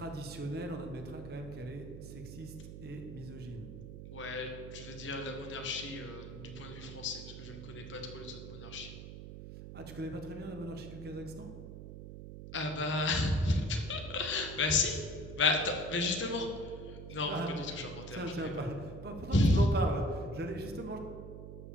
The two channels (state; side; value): noise; right; hum, 10 dB below the sound